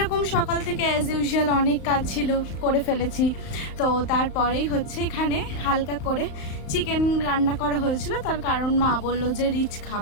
সকাল থেকে অ্যাজ ইউজুয়াল অনেক কাজ ছিল, করে ফেলেছি। তো তারপরেই হচ্ছে এখানে হালকা করে চিকেন রান্না করা হয়েছিল। তার কারণ মা বললো যে রিচ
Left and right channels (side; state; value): right; late; 35 ms